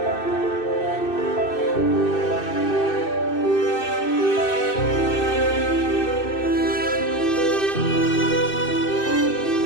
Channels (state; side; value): late; right; 2.6 ms